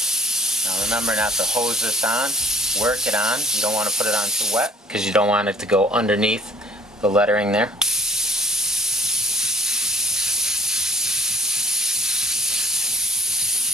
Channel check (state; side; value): normal; both; correlation 0.54